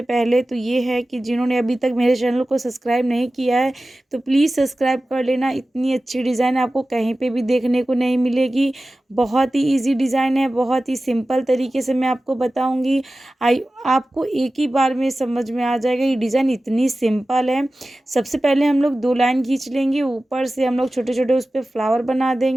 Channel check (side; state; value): both; normal; correlation 0.95